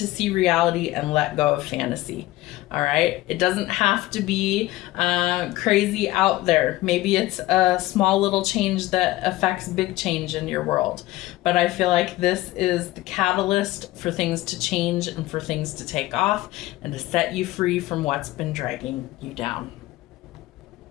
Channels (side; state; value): right; quieter; 17.3 dB